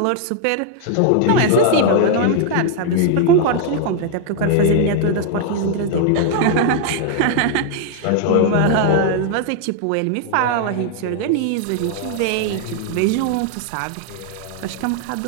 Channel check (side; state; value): both; different; correlation 0.00